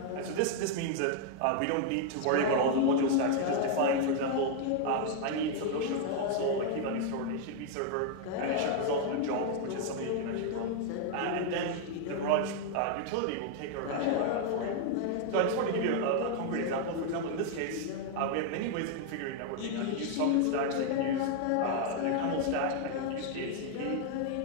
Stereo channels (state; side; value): different; both; correlation 0.00